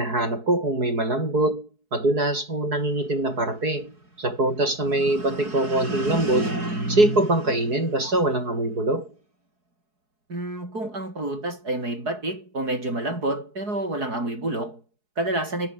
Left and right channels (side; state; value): left; late; 4.7 ms